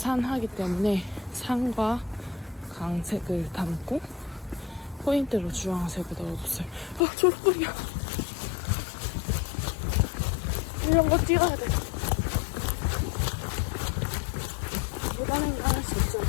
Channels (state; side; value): drops out; right; at 7.0 s